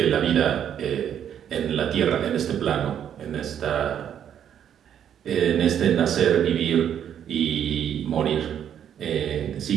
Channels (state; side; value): quieter; left; 9.3 dB